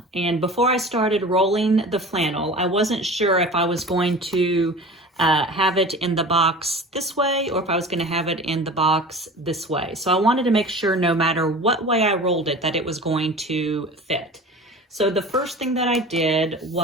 and before I started rolling the flannel, I wasn't sure if I was going to have it in the box this way or if I was going to have it in the box this way. So I wanted to make sure no matter what way I rolled it that it was going to fit. So the first thing that I did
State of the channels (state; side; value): normal; both; correlation 0.38